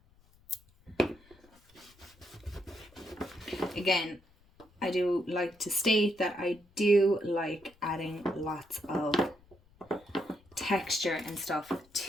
Again, I do like to state that I do like adding lots of texture and stuff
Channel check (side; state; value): left; noise; rumble, 29 dB below the sound